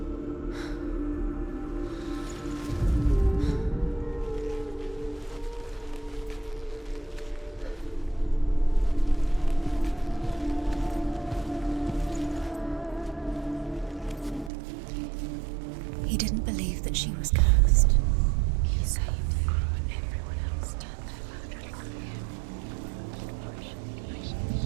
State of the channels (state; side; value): drops out; left; at 14.5 s